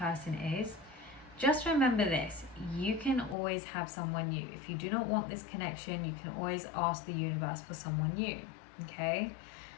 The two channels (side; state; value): right; drops out; at 3.4 s